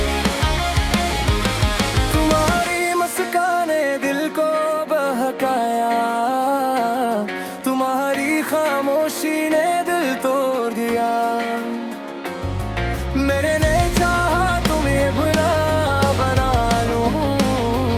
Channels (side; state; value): both; identical; correlation 1.00